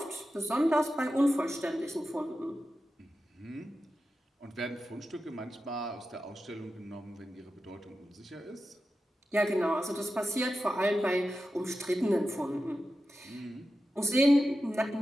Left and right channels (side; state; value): both; normal; correlation 0.91